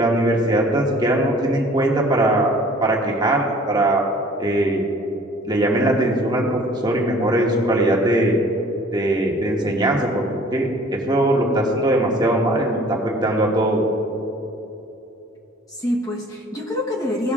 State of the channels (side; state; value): both; normal; correlation 0.51